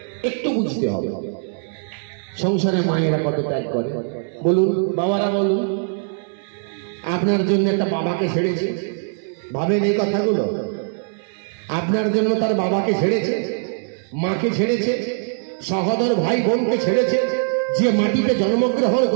একটু বুঝতে হবে সংসারে মায়েরা কত ত্যাগ করে। বলুন বাবারা, বলুন আপনার জন্য একটা বাবাকে ছেড়েছে, ভাবেন এই কথাগুলো? আপনার জন্য তার বাবাকে ছেড়েছে, মাকে ছেড়েছে, সহোদর ভাই বোনকে ছেড়েছে। যে মাটিতে জন্মগ্রহণ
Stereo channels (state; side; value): silent; left; digital silence